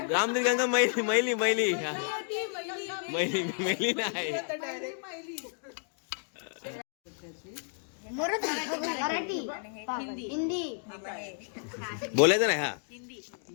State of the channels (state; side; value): silent; right; 57 dB below the other